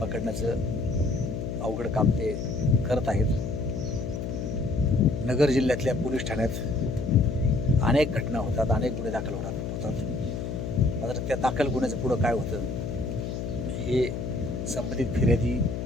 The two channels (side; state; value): left; noise; hum, 4 dB below the sound